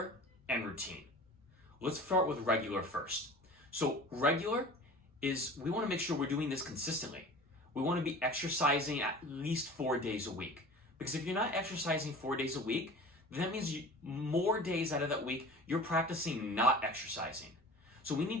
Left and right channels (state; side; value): normal; both; correlation 0.40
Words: and routine. Let's start with regular first. So, regular is we want to make sure we're doing this consistently. We want to be exercising at least 4 days a week. Because if you're not exercising 4 days a week, then that means more days out of that week, you're practicing not exercising. So we need